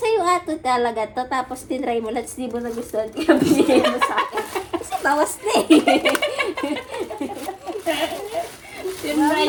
ato talaga to, tapos tinry mo lang, di mo nagustuhan, kaya binigay mo sa akin. Kasi bawas na eh.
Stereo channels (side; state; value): both; identical; correlation 1.00